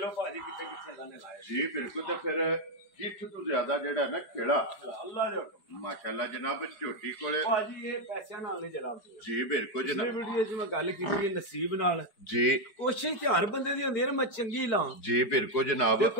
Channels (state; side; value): late; right; 4.9 ms